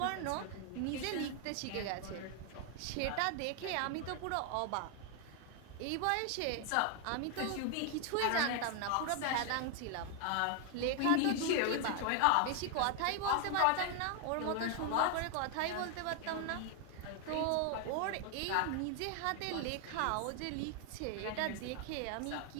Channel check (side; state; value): both; different; correlation 0.00